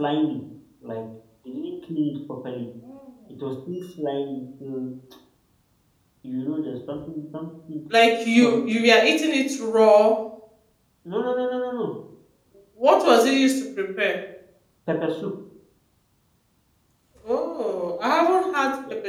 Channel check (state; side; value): identical; both; correlation 1.00